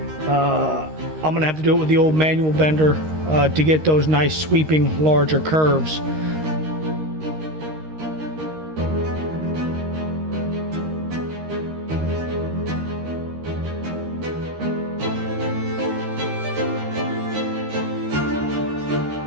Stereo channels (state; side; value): late; left; 13 ms